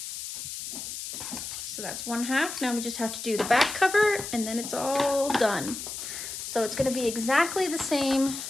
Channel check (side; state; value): left; noise; hiss, 7 dB below the sound